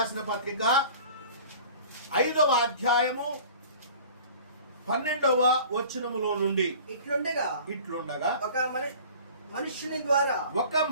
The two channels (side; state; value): both; inverted; correlation -0.45